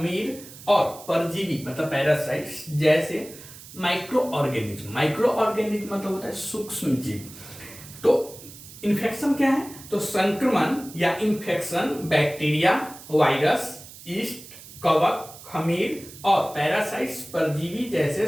और परजीवी मतलब पैरासाइट्स जैसे माइक्रो ऑर्गेनिज्म। माइक्रो ऑर्गेनिज्म मतलब होता है सूक्ष्म जीव। तो इन्फेक्शन क्या है, तो संक्रमण या इन्फेक्शन बैक्टीरिया, वायरस, यीस्ट, कवक, खमीर और पैरासाइट्स परजीवी जैसे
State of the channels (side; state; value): right; noise; hiss, 17 dB below the sound